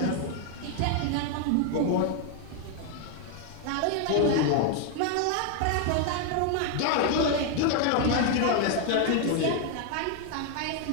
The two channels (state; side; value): different; both; correlation 0.01